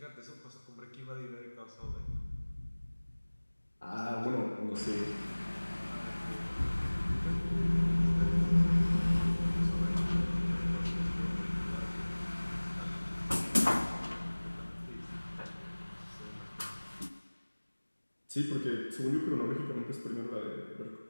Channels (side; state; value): both; inverted; correlation -1.00